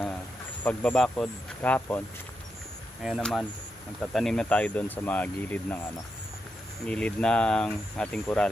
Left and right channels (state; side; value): normal; both; correlation 0.85